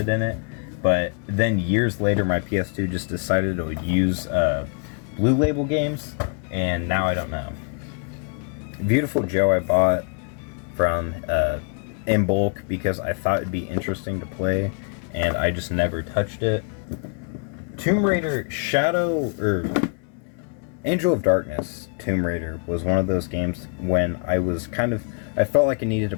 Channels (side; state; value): right; quieter; 39.3 dB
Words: in it. But then years later, my PS2 just decided it would use Blue Label games, and now I don't know. Beautiful Joe I bought from in bulk because I thought it'd be interesting to play, and I just never touched it. Tomb Raider Angel of Darkness Tomb Raider was one of those games when I felt like I needed to